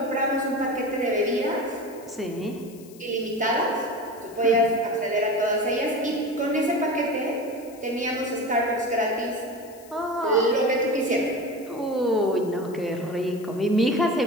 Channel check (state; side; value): noise; left; hiss, 23 dB below the sound